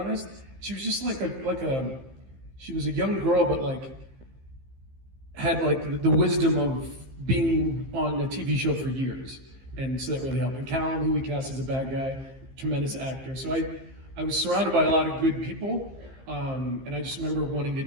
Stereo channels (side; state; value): left; late; 15 ms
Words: She was just she was a young girl, but had the wisdom of being on a TV show for years, and so that really helped. And Callum, who we cast as a bad guy, tremendous actor. So I was surrounded by a lot of good people, and I just remember wanting to